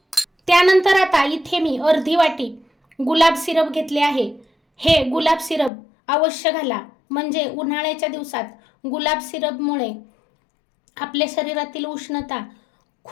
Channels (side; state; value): right; drops out; at 5.7 s